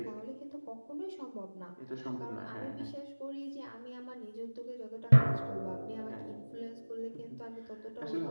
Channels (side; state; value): both; inverted; correlation -1.00